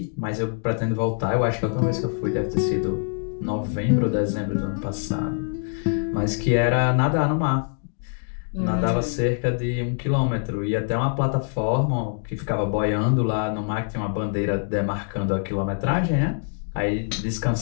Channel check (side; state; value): right; silent; 62 dB below the other